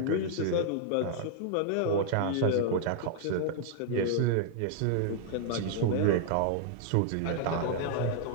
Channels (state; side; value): different; both; correlation -0.01